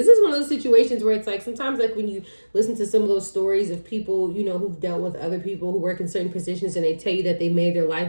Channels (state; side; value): inverted; both; correlation -1.00